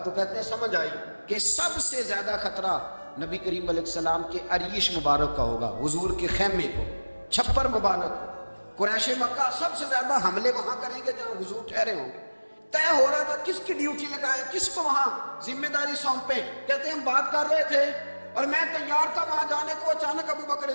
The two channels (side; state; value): both; inverted; correlation -1.00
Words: کہتے ہیں سمجھ آئی کہ سب سے زیادہ خطرہ نبی کریم علیہ السلام کے عریش مبارک کا ہوگا، حضور کے خیمے کو، چھپر مبارک کو. قریش مکہ سب سے زیادہ حملے وہاں کریں گے جہاں حضور ٹھہرے ہوں گے. طے ہو رہا تھا کس کی ڈیوٹی لگائے، کس کو وہاں ذمہ داری سونپے. کہتے ہیں ہم بات کر رہے تھے اور میں تیار تھا وہاں جانے کو، اچانک ابوبکر